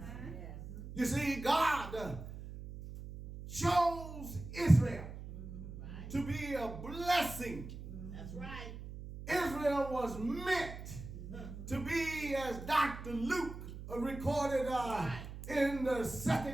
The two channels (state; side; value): noise; right; hum, 11 dB below the sound